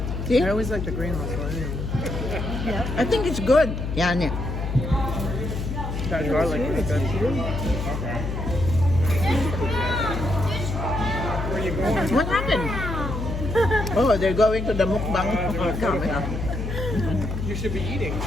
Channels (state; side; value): noise; left; hum, 4 dB below the sound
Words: See? I always like the green mussel. Anyway. I think it's good, Yani. That garlic is good. Where you going? What happened? Oh, they're going to the mukbang. You should be eating.